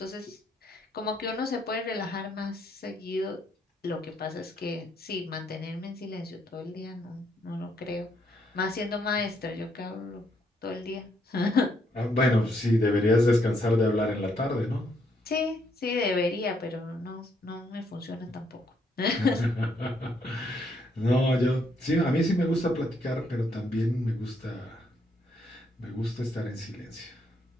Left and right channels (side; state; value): both; normal; correlation 0.73